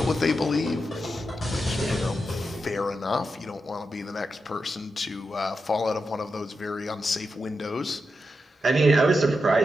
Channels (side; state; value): both; normal; correlation 0.88